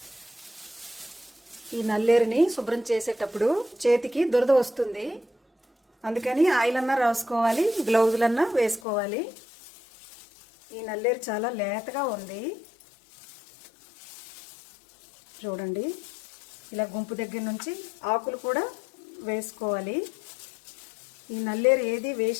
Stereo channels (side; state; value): right; drops out; at 8.8 s